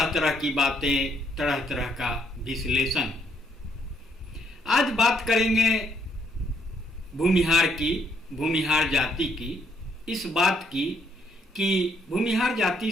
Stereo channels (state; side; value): normal; both; correlation 0.71